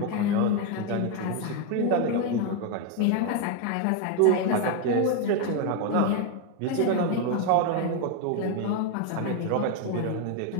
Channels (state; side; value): different; both; correlation 0.01